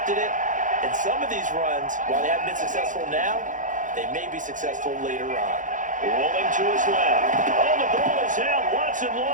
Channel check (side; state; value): left; late; 0.37 ms